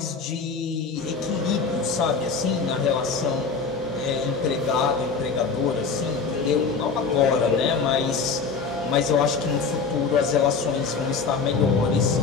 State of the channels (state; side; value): quieter; right; 5.0 dB